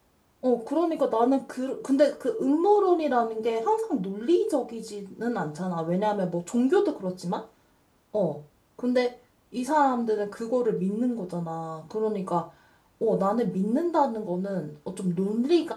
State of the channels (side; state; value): both; identical; correlation 1.00